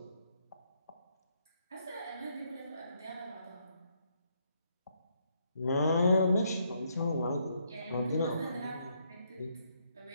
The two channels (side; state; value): both; inverted; correlation -0.74